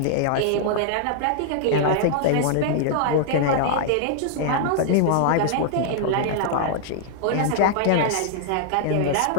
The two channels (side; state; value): both; different; correlation -0.01